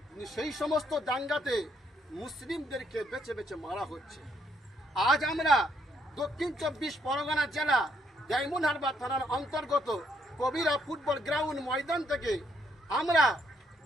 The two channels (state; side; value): normal; both; correlation 0.71